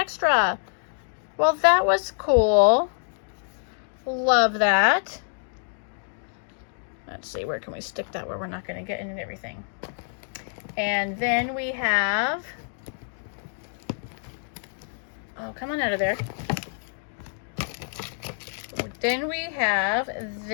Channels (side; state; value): right; silent; digital silence